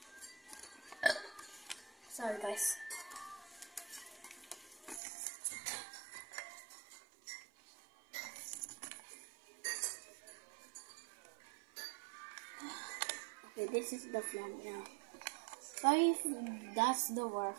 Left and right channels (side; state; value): left; drops out; at 5.0 s